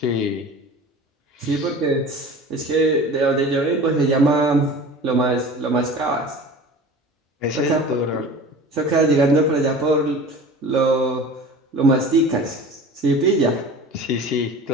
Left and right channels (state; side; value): normal; both; correlation 0.39